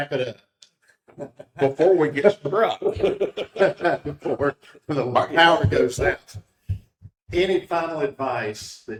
it up. Before we get struck. Before the power goes out. Any final advice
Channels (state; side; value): identical; both; correlation 1.00